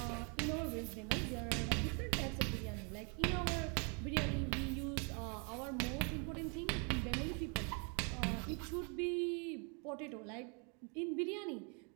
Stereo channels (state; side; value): quieter; left; 36.1 dB